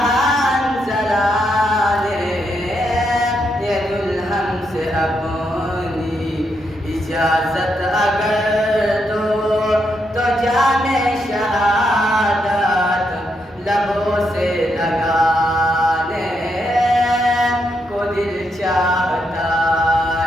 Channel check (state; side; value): normal; both; correlation 0.80